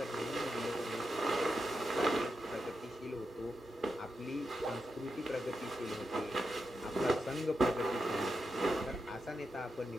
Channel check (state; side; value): normal; both; correlation 0.87